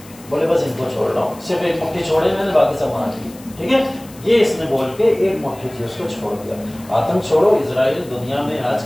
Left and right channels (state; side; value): noise; left; hiss, 22 dB below the sound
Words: बोले बस इनको छोड़ रहा हूँ, सिर्फ एक मुट्ठी छोड़े मैंने, बाकी सब मार दी। ठीक है, ये इसने बोल के एक मुट्ठी जीव्स को छोड़ दिया। आतंक छोड़ो, इजराइल दुनिया में आज